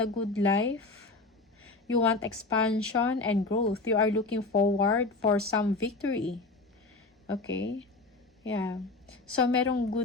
the good life. You want expansion and growth. You are looking forward for some victory. Okay? Yeah. So, merong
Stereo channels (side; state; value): right; quieter; 3.5 dB